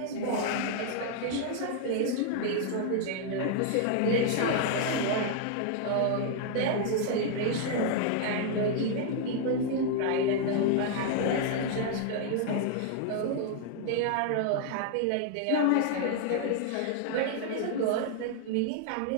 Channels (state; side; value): different; both; correlation 0.00